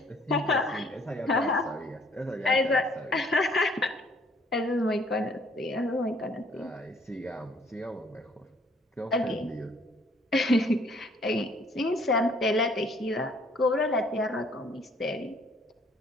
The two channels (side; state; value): both; normal; correlation 0.61